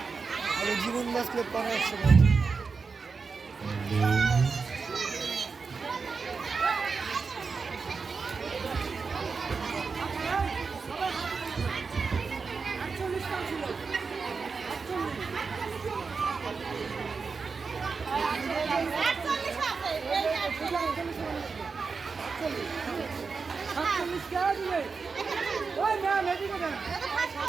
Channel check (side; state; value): left; quieter; 4.9 dB